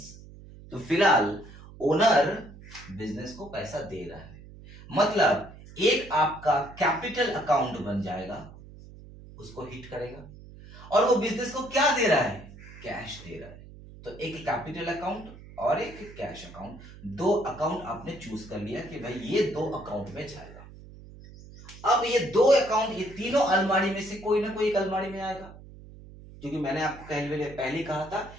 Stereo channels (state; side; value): noise; right; hum, 18 dB below the sound